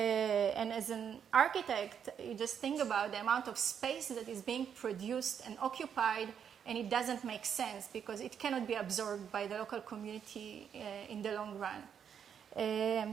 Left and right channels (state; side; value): quieter; left; 8.0 dB